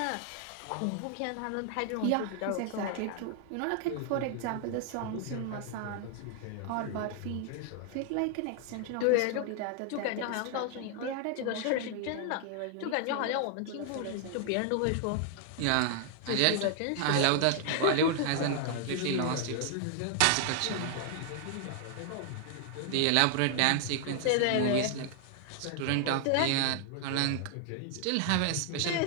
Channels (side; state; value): both; different; correlation 0.00